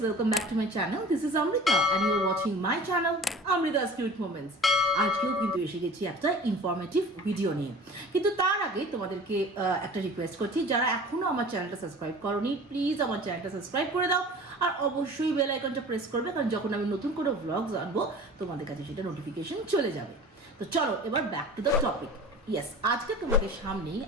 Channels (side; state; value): both; normal; correlation 0.41